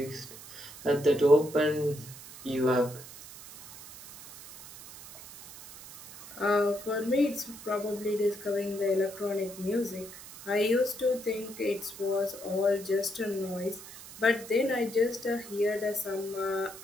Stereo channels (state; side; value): noise; right; hiss, 15 dB below the sound